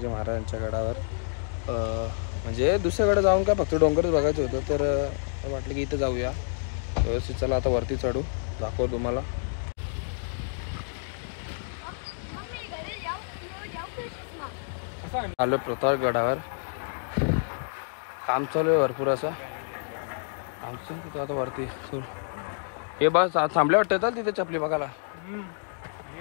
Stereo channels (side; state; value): right; silent; digital silence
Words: महाराजांच्या गडावर. म्हणजे दुसऱ्याकडे जाऊन काय फक्त डोंगरच बघायचं होतं. तर वाटलं की इथं जाऊया व्यवस्थित. चला आता वरती चढू, दाखवतो तुम्हाला. आलो प्रतापगडावर. काम चालू आहे भरपूर असं. आमचं तिथं आता वरती हे बस थांबले वाटतं तर तिथे चपली बघायला